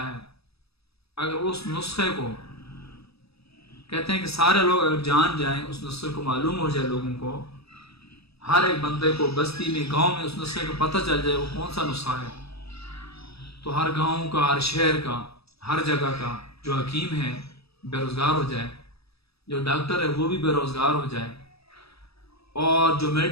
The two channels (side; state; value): right; late; 0.77 ms